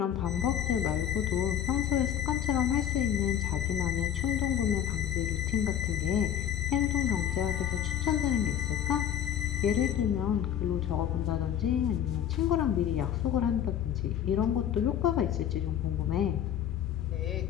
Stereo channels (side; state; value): right; quieter; 9.9 dB